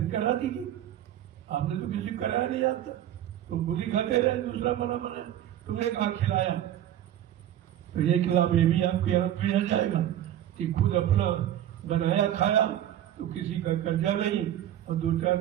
करा दीजिए। आपने तो किसी को कराया नहीं आता, तो खुद ही खाते रहे, दूसरा बना तुमने कहा खिलाया। तो ये खिलाफ ये भी आपके हाथ में आ जाएगा कि खुद अपना बनाया खाया, तो किसी का कर्जा नहीं, और 2-4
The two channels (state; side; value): quieter; left; 11.7 dB